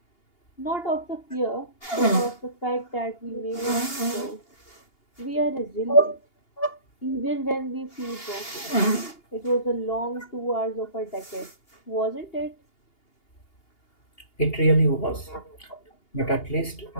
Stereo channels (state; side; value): late; right; 2.8 ms